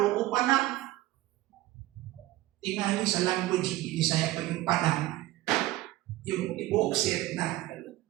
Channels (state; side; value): quieter; left; 16.9 dB